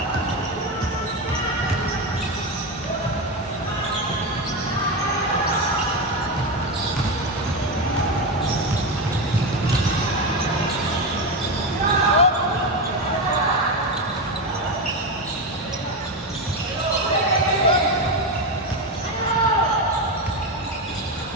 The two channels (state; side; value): normal; both; correlation 0.14